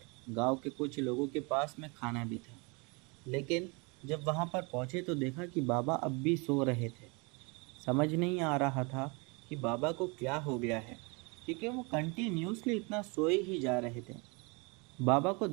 गांव के कुछ लोगों के पास में खाना भी था, लेकिन जब वहां पर पहुंचे तो देखा कि बाबा अब भी सो रहे थे। समझ नहीं आ रहा था कि बाबा को क्या हो गया है, क्योंकि वो कंटिन्यूसली इतना सोए ही जा रहे थे। बाबा को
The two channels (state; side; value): quieter; left; 30.2 dB